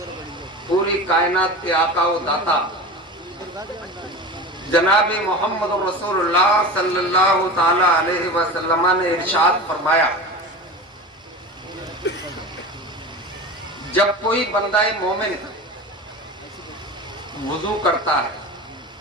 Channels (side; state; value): both; normal; correlation 0.31